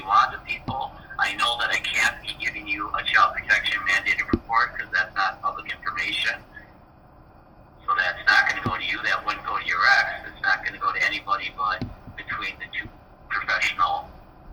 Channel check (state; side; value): identical; both; correlation 1.00